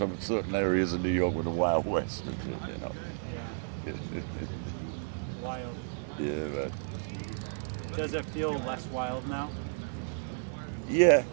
certain areas of New York with the Wild West, you know. Yeah. Wild. Yeah, but Does it feel less wild now? yeah.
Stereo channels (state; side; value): silent; left; digital silence